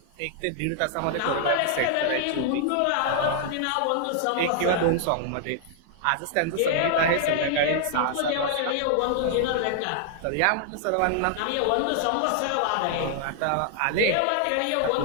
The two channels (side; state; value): both; different; correlation -0.01